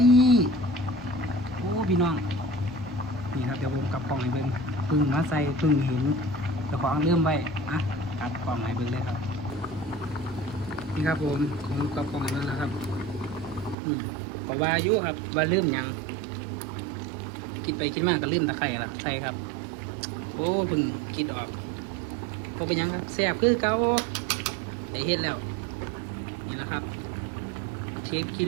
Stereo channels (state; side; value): drops out; left; at 13.8 s